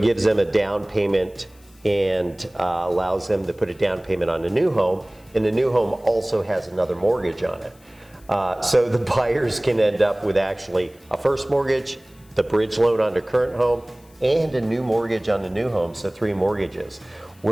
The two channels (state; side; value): noise; left; hiss, 29 dB below the sound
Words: gives them a down payment and allows them to put a down payment on the new home, and the new home also has another mortgage on it. So the buyers can end up with actually a first mortgage, the bridge loan on their current home, and a new mortgage on the new home, so 3 mortgages.